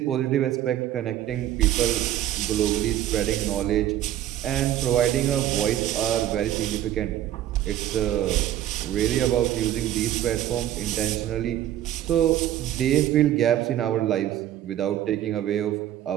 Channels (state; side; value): quieter; left; 12.3 dB